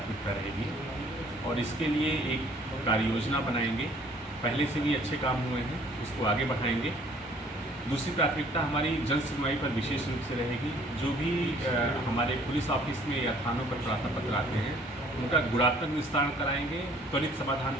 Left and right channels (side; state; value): both; normal; correlation 0.57